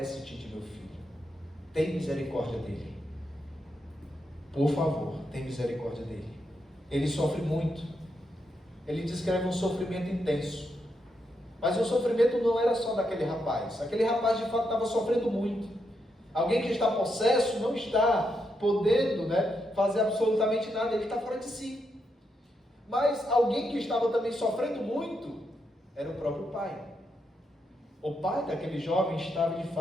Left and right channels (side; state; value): both; normal; correlation 0.82